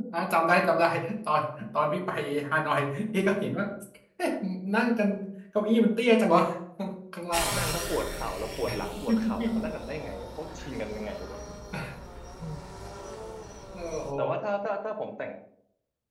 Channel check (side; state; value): both; identical; correlation 1.00